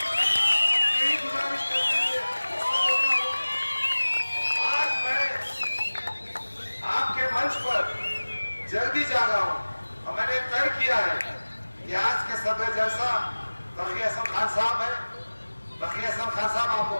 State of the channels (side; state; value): both; inverted; correlation -1.00